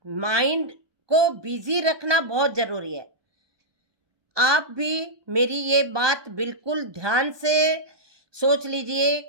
माइंड को बिजी रखना बहुत जरूरी है। आप भी मेरी ये बात बिल्कुल ध्यान से सोच लीजिए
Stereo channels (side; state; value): left; late; 1.2 ms